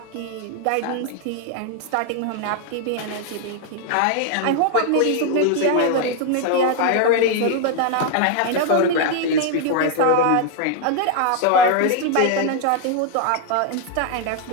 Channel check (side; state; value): both; different; correlation 0.00